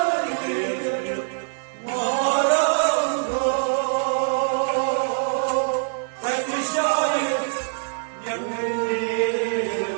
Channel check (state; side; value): silent; left; digital silence